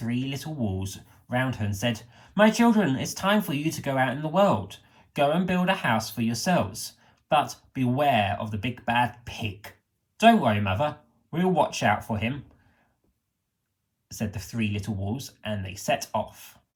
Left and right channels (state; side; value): identical; both; correlation 1.00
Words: little wolves round her and said, "My children, it's time for you to go out in the world. Go and build a house for yourselves. But beware of the big bad pig." "Don't worry, mother, we'll watch out for him," said the three little wolves, and they set off.